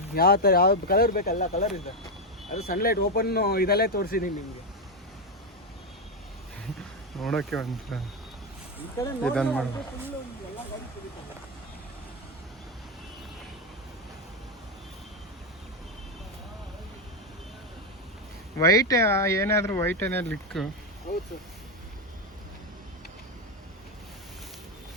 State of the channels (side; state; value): both; normal; correlation 0.08